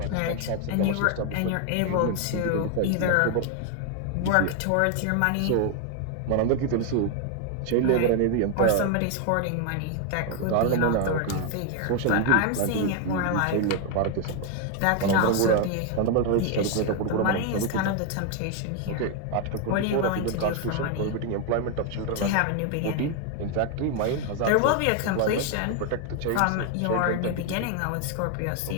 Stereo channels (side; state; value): both; different; correlation 0.01